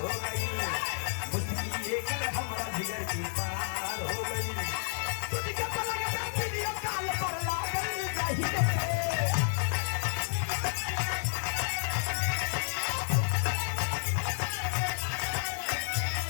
हो गई मुझे एक हमरा जिगर की पार हो गई तुझे पलक पे वीडियो कॉल पर लागल चाहिए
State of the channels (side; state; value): right; silent; digital silence